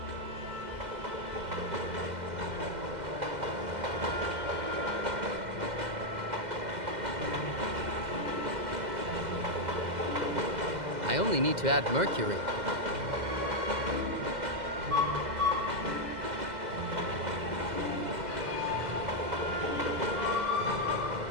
I only need to add mercury.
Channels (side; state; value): left; late; 2.0 ms